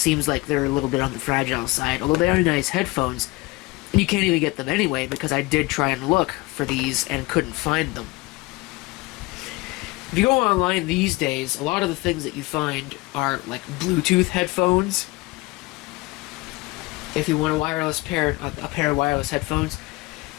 like they're a little bit on the fragile side, although they are nice headphones. And you can't even get them anyway, because I did try and look for these and couldn't find them. If you go online these days, a lot of the things that you find are like Bluetooth headphones. If you want a pair of wireless headphones.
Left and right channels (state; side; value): quieter; right; 22.4 dB